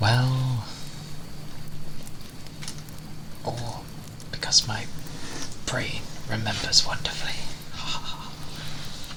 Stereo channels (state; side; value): identical; both; correlation 1.00